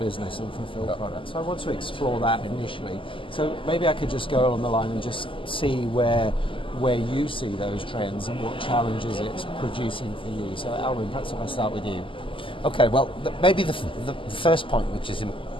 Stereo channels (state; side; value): late; right; 0.25 ms